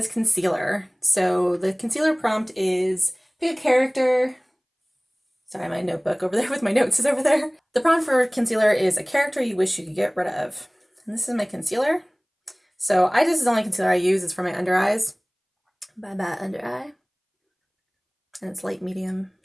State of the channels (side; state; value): both; identical; correlation 1.00